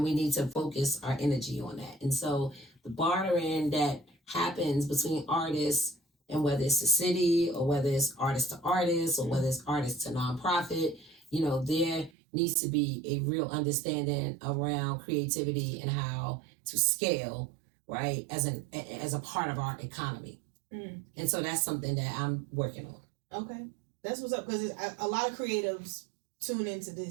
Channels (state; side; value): drops out; left; at 12.1 s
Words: we need to focus our energy on that. And so the bartering that happens between artists, and whether it's the city or whether it's artist to artist or whether it's artist to nonprofit, there needs to be a real understanding around creativity and how to scale, right, as a part of our economy. And so that's something that I'm working on. Okay. That's what's up, because a lot of creatives tune into